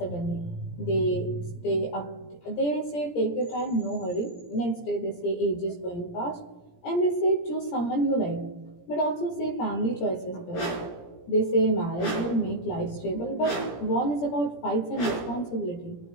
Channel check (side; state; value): right; late; 17 ms